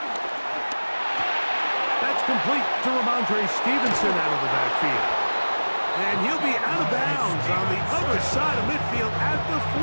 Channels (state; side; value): inverted; both; correlation -1.00